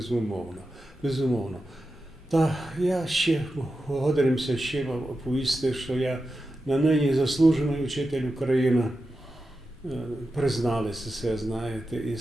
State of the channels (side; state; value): both; normal; correlation 0.91